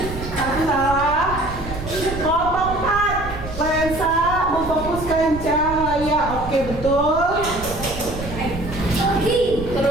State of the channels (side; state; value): right; noise; rumble, 10 dB below the sound